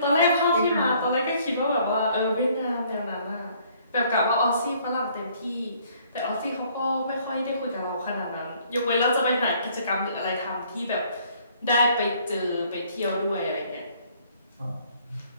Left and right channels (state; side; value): inverted; both; correlation -0.61